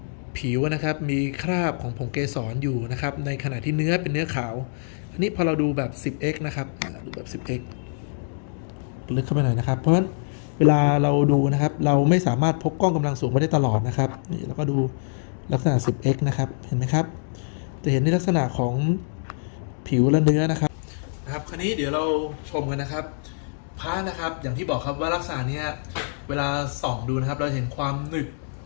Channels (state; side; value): silent; right; digital silence